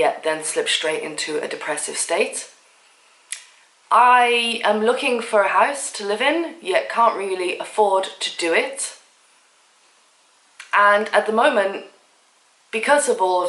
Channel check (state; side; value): identical; both; correlation 1.00